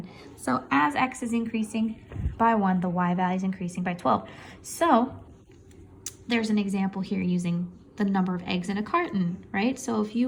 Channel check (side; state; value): both; identical; correlation 1.00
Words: So as X is increasing by 1, the Y value is increasing by 12. So there's an example here using the number of eggs in a carton, right? So if you